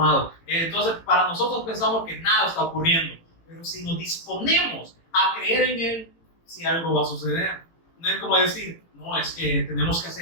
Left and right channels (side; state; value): right; late; 18 ms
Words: Entonces, para nosotros pensamos que nada está ocurriendo, pero si nos disponemos a creer en Él, si algo va a suceder. No es como decir, no, es que tenemos que